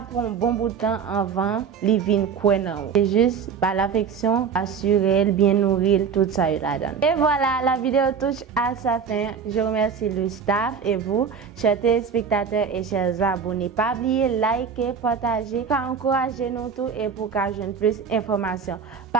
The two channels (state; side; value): quieter; left; 6.4 dB